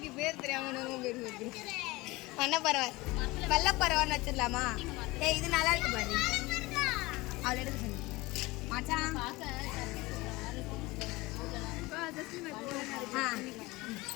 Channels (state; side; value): quieter; right; 21.7 dB